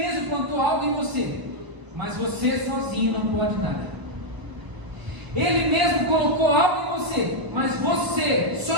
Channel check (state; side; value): late; left; 1.0 ms